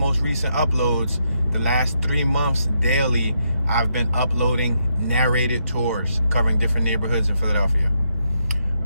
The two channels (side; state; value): both; inverted; correlation -0.79